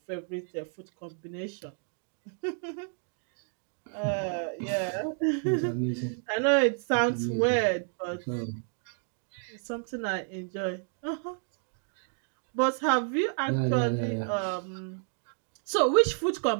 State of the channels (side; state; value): left; silent; 57 dB below the other